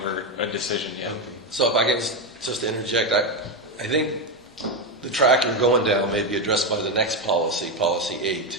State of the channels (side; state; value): both; normal; correlation 0.11